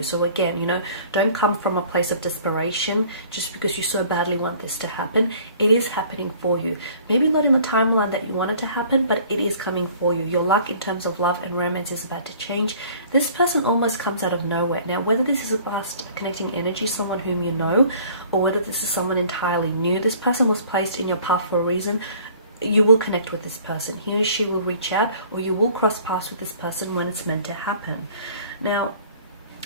So again, you know, don't come from a place of desperation just because you so badly want this to happen. It is happening for you. Maybe not in the timeline that you want it to happen, but it is coming for you. Your luck in terms of love and romance is about to change. This person almost comes out of nowhere. Now, whether this is a past connecting energy, someone whom you know, or whether this is someone entirely new, this person was placed in your path for a reason. You will connect with this person. He or she will reach out, or you will cross paths with this person when it's meant to happen. Now,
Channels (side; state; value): both; inverted; correlation -0.52